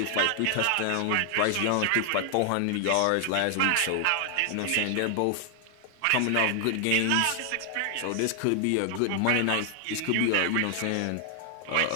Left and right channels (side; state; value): both; different; correlation 0.00